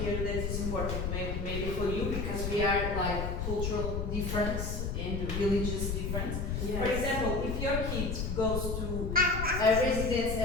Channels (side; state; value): left; noise; rumble, 2 dB below the sound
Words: here that is important, maybe for you, because we are like cultural difference and religious difference. Yes. For example, if your kid goes to a residence,